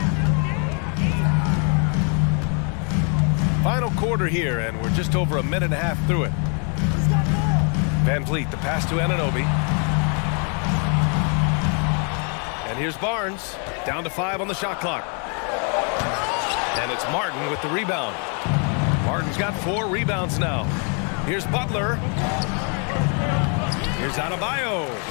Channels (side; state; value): right; quieter; 39.7 dB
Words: Final quarter here, and we're just over a minute and a half through it. Van Vliet, the pass to Anunoby. And here's Barnes, down to 5 on the shot clock. And it's Martin with the rebound. Martin's got 4 rebounds now. Here's Butler. Here's Adebayo.